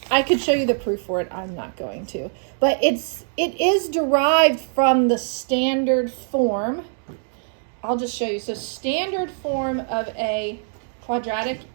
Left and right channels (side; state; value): left; silent; digital silence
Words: I could show you the proof for it, I'm not going to. But it is derived from the standard form. I'll just show you. So standard form of a quadratic